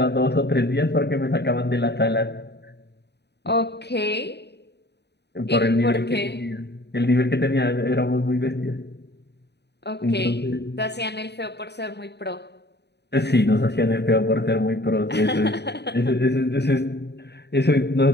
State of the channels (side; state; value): right; late; 0.49 ms